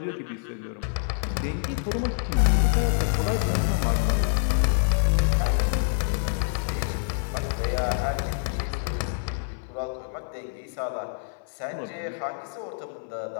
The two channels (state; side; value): silent; right; 58 dB below the other